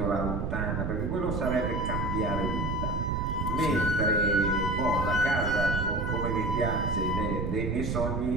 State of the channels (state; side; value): noise; right; rumble, 1 dB below the sound